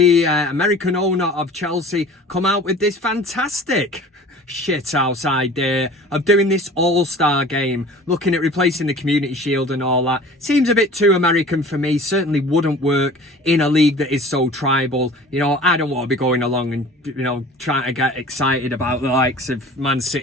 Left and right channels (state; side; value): normal; both; correlation 0.44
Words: American owner of Chelsea, come out with this fantastic shithouse idea of doing this all-star game, looking at replacing the Community Shield and all that. Seems a bit too American for me. Certainly wouldn't work in a league that is so tribal. You know, I don't want to be going along and, you know, trying to get excited about the likes of Man